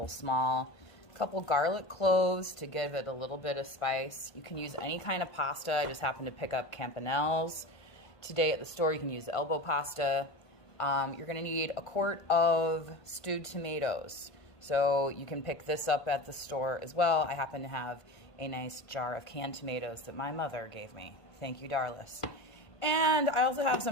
small. A couple garlic cloves to give it a little bit of spice. You can use any kind of pasta. I just happened to pick up Campanelle's. Today at the store, you can use elbow pasta. You're gonna need a quart of stewed tomatoes. So you can pick this up at the store as well. I happen to have a nice jar of canned tomatoes that my mother gave me. Thank you, Darlis. And I also have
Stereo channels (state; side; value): late; right; 1.5 ms